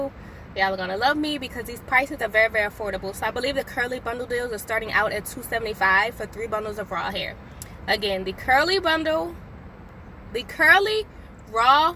y'all are gonna love me, because these prices are very affordable. So I believe the curly bundle deals are starting out at $275 for 3 bundles of raw hair. Again, the curly raw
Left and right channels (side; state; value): both; identical; correlation 1.00